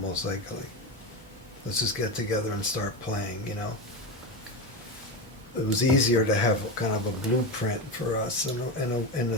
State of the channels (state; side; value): normal; both; correlation 0.18